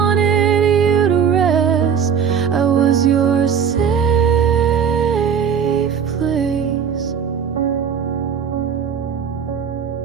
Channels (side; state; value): left; quieter; 7.3 dB